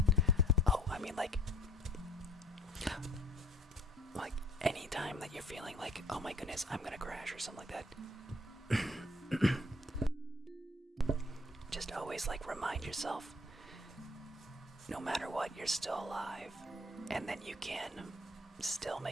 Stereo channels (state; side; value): normal; both; correlation 0.56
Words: Oh, I mean, like anytime that you're feeling like, oh my goodness, I'm gonna crash or something like that, just always like remind yourself, no matter what, you're still alive, and then you can still